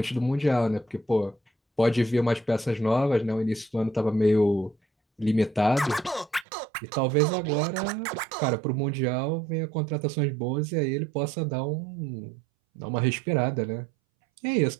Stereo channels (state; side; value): drops out; left; at 6.5 s